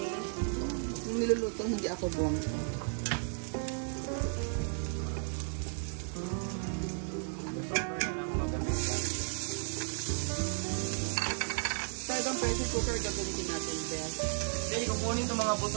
Yung niluluto, hindi ako buwang. Talagang pressure cooker gagamitin natin, Beth. Hey, kukunin itong mga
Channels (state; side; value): silent; left; 55 dB below the other